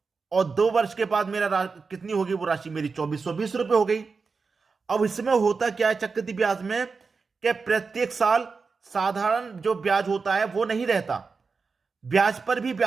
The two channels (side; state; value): left; quieter; 4.7 dB